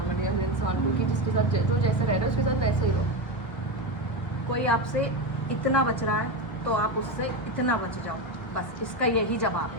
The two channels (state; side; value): late; right; 1.1 ms